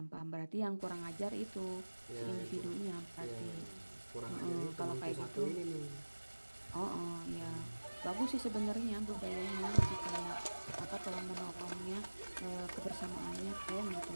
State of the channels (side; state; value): both; inverted; correlation -1.00